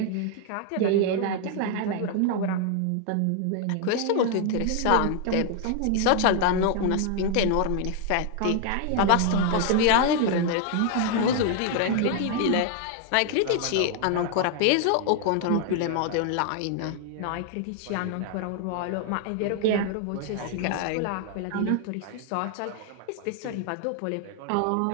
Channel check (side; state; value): both; different; correlation 0.00